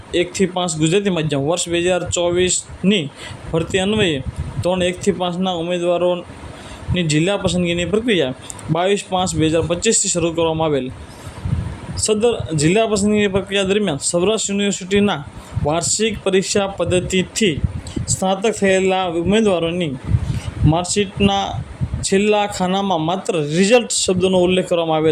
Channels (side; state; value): both; identical; correlation 1.00